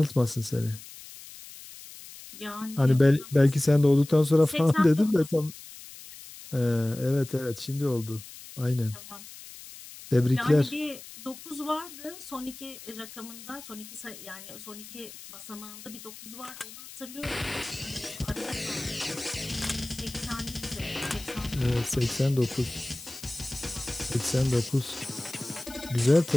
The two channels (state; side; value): noise; left; hiss, 16 dB below the sound